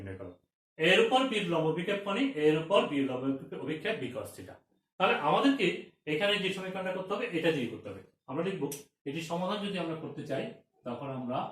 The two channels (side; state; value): both; identical; correlation 1.00